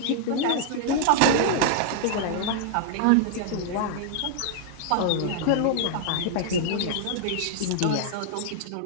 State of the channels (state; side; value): different; both; correlation -0.01